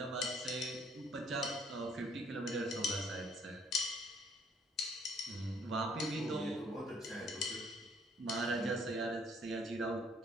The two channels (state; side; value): normal; both; correlation 0.63